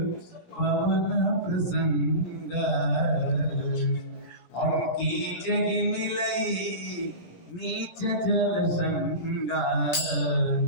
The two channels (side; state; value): right; late; 17 ms